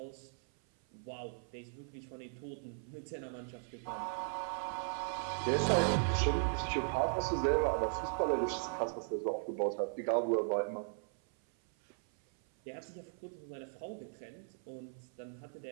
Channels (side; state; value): left; silent; 53 dB below the other